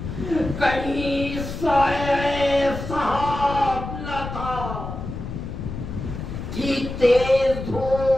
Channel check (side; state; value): left; noise; rumble, 7 dB below the sound